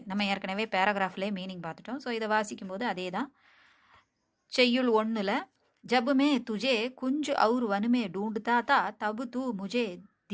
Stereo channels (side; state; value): both; identical; correlation 1.00